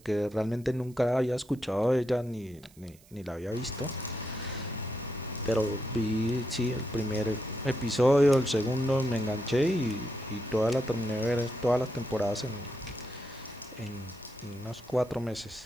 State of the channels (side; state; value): right; noise; hiss, 27 dB below the sound